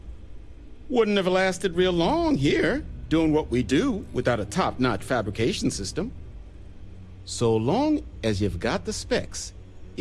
Wouldn't have lasted real long here, doing what we do without a top-notch fabrication system. So long as you've got the specs,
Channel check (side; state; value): both; identical; correlation 1.00